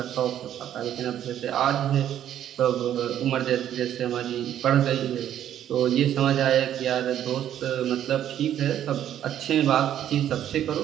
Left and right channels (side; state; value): left; quieter; 10.8 dB